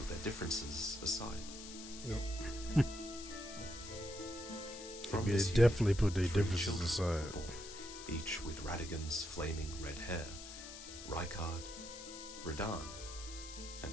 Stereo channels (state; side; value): noise; left; hiss, 12 dB below the sound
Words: their differences aside. Yep. From They this definitely put their 3 differences children aside. were born, each with Radigan's flaming red hair, Rykard, Radahn,